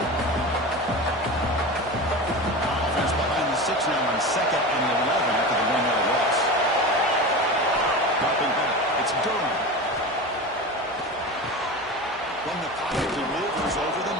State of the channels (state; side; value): normal; both; correlation 0.28